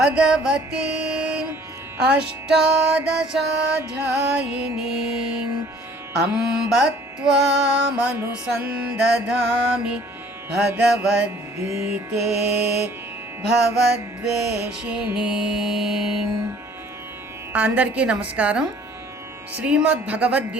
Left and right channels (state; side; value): normal; both; correlation 0.54